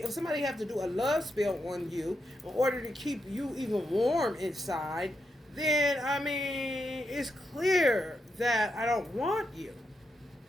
if somebody have to do a love spell on you in order to keep you even warm inside, then, I mean, it's clear that I don't want you.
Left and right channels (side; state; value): both; normal; correlation 0.83